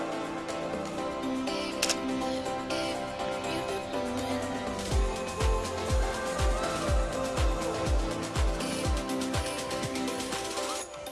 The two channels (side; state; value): both; identical; correlation 1.00